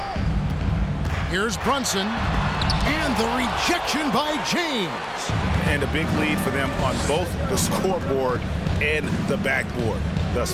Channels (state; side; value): identical; both; correlation 1.00